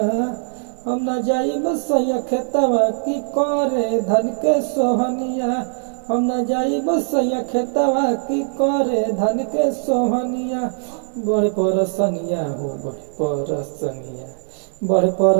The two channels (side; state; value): left; silent; 65 dB below the other